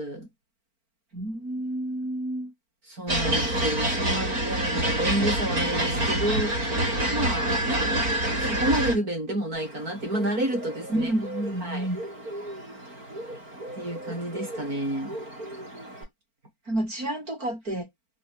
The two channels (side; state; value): left; late; 4.4 ms